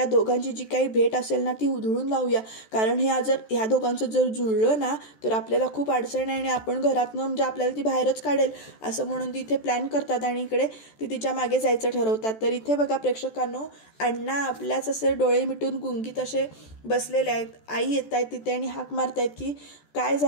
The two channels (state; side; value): late; right; 14 ms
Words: दोघांची जी काही भेट असेल ना ती उधळून लावूया, कारण ह्या दोघांचं जर जुळलं ना तर आपल्याला खूप अडचण आहे आणि आपण घरातनं म्हणजे आपल्याला ती बाहेरच काढेल, असं म्हणून ती इथे प्लॅन करतात आणि इकडे ती तिच्या मागे जायचं ठरवतात. तर इथे बघा प्रेक्षकांनो, अण्णा आपल्याच असे डोळे मिटून गुंगीत असे बसलेले आहेत. आई येत आहेत तिथे आणि हाक मारतायत की काय